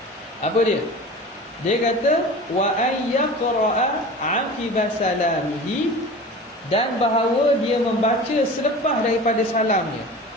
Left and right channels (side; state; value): both; normal; correlation 0.36